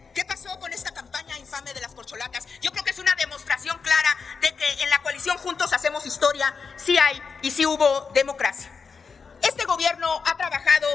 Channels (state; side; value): quieter; right; 5.4 dB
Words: qué pasó con esta campaña infame de las corcholatas. Yo creo que es una demostración clara de que en la coalición Juntos Hacemos Historia sí hay y sí hubo democracia. Este gobierno ha trabajado,